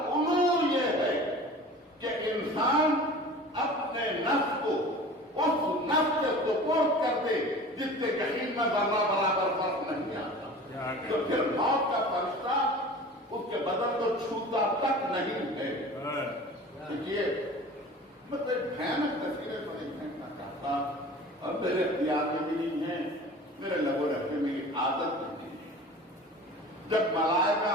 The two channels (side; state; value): both; normal; correlation 0.40